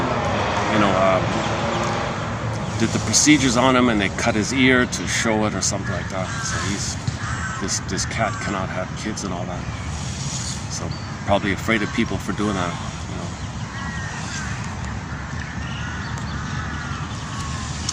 did the procedures on him and they cut his ear to show it or something like that. So this cat cannot have kids and all that. So probably afraid of people for doing that.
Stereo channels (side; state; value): both; identical; correlation 1.00